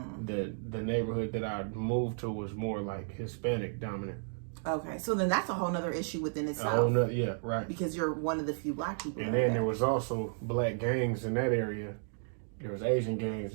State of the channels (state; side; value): silent; left; digital silence